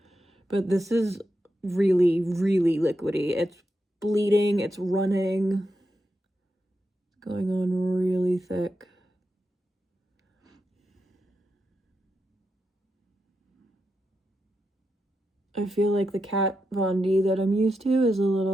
but this is really, really liquidy. It's bleeding, it's running, it's going on really thick. I feel like the Kat Von D that I'm used to is a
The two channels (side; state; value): both; normal; correlation 0.86